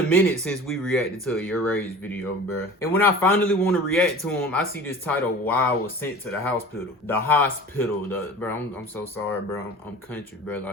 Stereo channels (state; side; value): normal; both; correlation 0.39